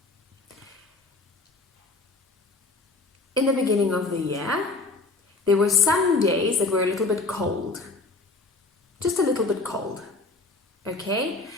in the beginning of the year, there were some days that were a little bit cold. Just a little bit cold. Okay,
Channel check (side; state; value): right; quieter; 3.4 dB